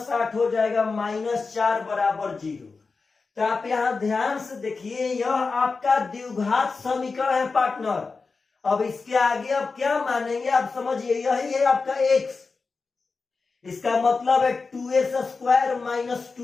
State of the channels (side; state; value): right; quieter; 4.4 dB